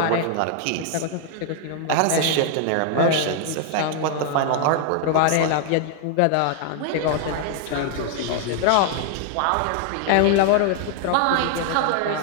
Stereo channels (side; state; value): both; different; correlation 0.00